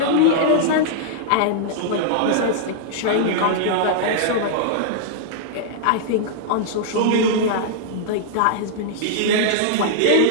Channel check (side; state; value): both; different; correlation -0.01